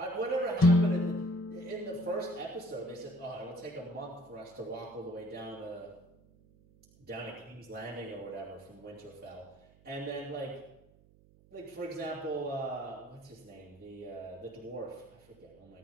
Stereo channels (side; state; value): right; noise; hum, 26 dB below the sound